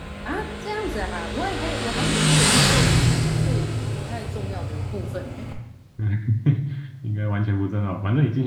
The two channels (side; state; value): both; identical; correlation 1.00